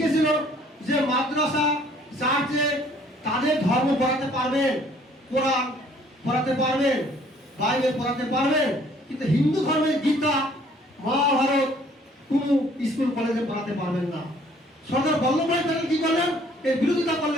যে মাদ্রাসা, চার্চে তাদের ধর্ম পড়াতে পারবেন, কোরআন পড়াতে পারবেন, বাইবেল পড়াতে পারবেন, কিন্তু হিন্দু ধর্মের গীতা, মহাভারত কোনো স্কুল কলেজে পড়াতে পারবেন না। সরদার বল্লভভাই প্যাটেল কি করলেন? এর বিরোধিতা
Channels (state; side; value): normal; both; correlation 0.59